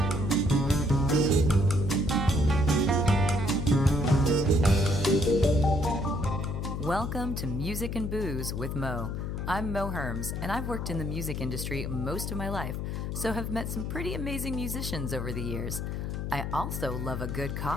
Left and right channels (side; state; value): left; noise; hum, 3 dB below the sound